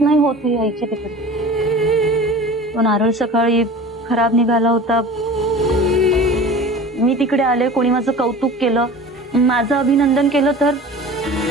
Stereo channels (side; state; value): both; normal; correlation 0.39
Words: नाही होत यायची तिकडे। तो नारळ सकाळी खराब निघाला होता, मी तिकडे आले, कोणी माझं कौतुक केलं, माझं अभिनंदन केलं तर